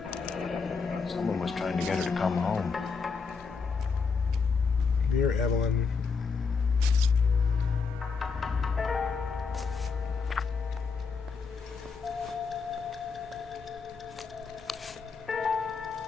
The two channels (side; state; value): right; quieter; 5.1 dB